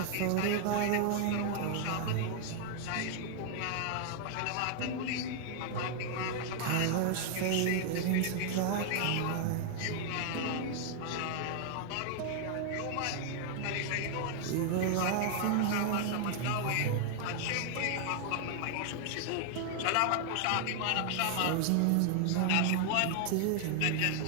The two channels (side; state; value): both; different; correlation 0.00